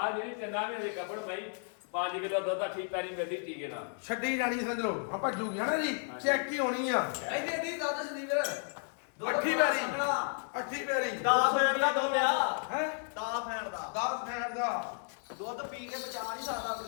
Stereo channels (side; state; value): right; silent; 56 dB below the other